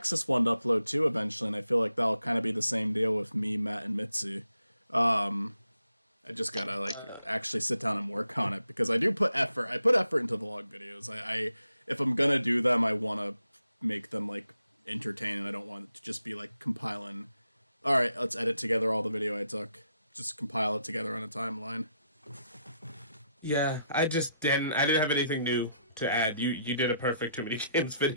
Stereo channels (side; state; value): both; inverted; correlation -0.78